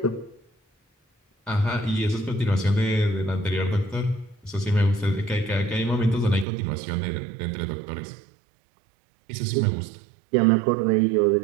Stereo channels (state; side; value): drops out; left; at 6.5 s